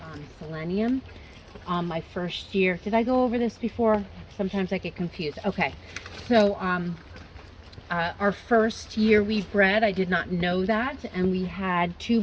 selenium. My first year, did I go over this before? Sometimes I get confused. Okay, so our first year we bred, I did not know that, and we had 2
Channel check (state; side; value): identical; both; correlation 1.00